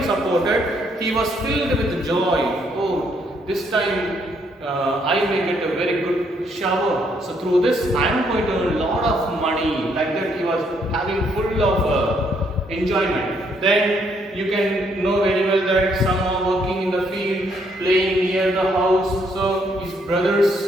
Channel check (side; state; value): both; normal; correlation 0.71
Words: supported, he was filled with joy. Oh, this time I may get a very good shower. So through this, I am going to earn a lot of money. Like that, he was having full of enjoyment. Then you can know very well that some are working in the field, playing near the house. So his brothers,